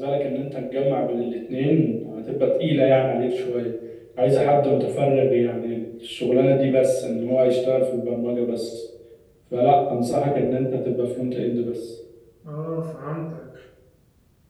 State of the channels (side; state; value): both; identical; correlation 1.00